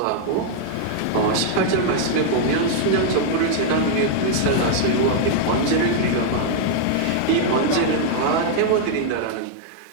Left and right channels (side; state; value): both; different; correlation 0.00